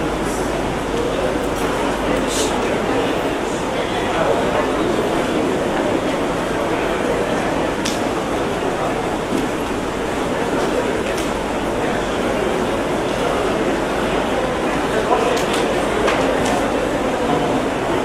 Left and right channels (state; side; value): identical; both; correlation 1.00